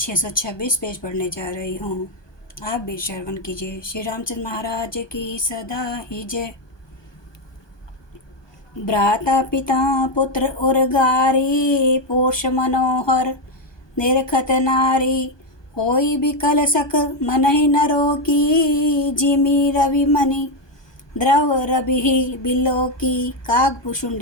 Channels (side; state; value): right; late; 1.2 ms